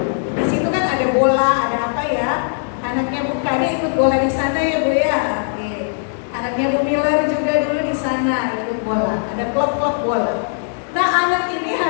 di situ kan ada bola, ada apa ya? Anaknya Bu Kade ikut bola di sana ya Bu ya. Oke. Anaknya Bu Miller juga dulu di sana ikut bola. Ada klub-klub bola. Nah, anak ini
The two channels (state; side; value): silent; right; 66 dB below the other